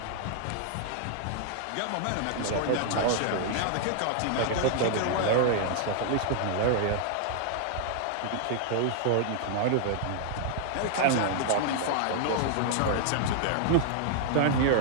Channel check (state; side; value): different; both; correlation 0.00